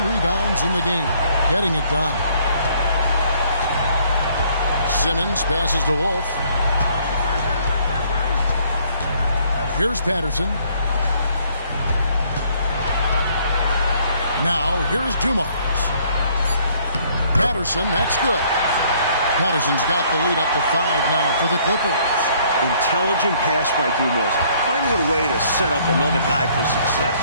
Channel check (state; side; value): inverted; both; correlation -0.63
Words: rebounds in the game. Getting it done. Simmons passes to Wolf. Here's Patterson. Now, here's Dumars. Patterson, that's good. Patterson's got the lead up to 5 now for the Clippers. Intelligent pass by Dumars, finding a way to set up another guy for success.